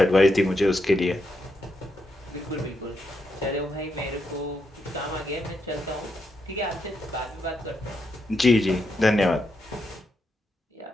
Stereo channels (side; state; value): both; normal; correlation 0.82